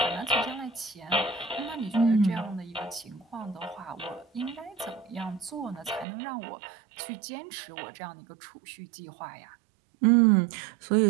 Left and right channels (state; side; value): drops out; left; at 6.1 s